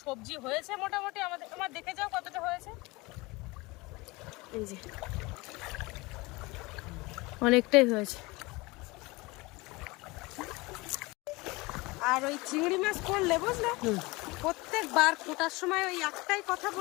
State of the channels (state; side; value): quieter; right; 23.6 dB